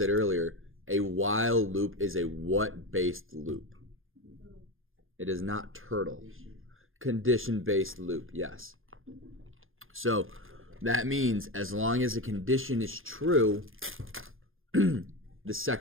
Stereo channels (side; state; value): left; late; 0.60 ms